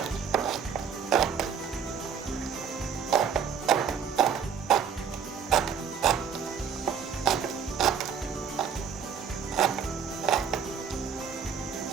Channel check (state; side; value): quieter; left; 7.0 dB